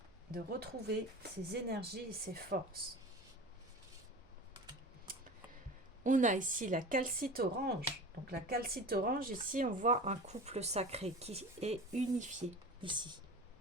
de retrouver ses énergies et ses forces. On a ici la calcite orange. Donc la calcite orange, ici, on voit un couple sacré qui est unifié ici.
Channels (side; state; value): both; normal; correlation 0.34